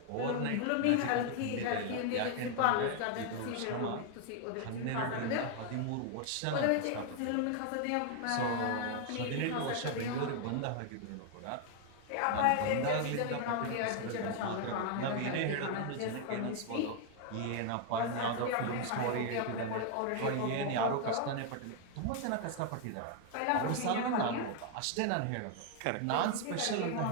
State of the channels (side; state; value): both; different; correlation 0.00